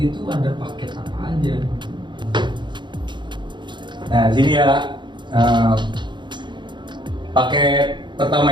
tuh ada paket apa aja? Nah, di sini ya paket pertama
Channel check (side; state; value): left; late; 0.22 ms